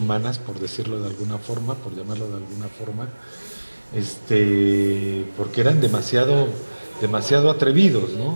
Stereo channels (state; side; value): inverted; both; correlation -1.00